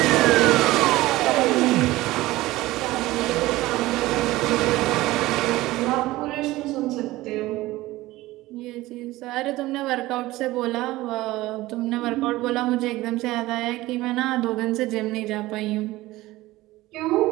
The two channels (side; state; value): left; quieter; 18.0 dB